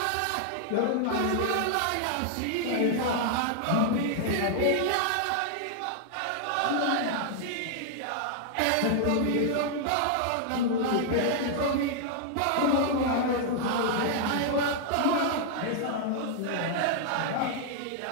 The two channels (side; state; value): both; different; correlation -0.01